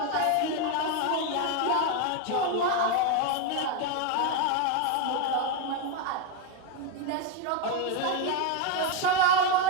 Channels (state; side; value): different; both; correlation 0.01